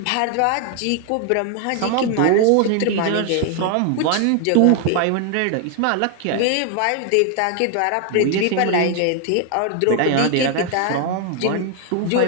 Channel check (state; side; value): different; both; correlation 0.00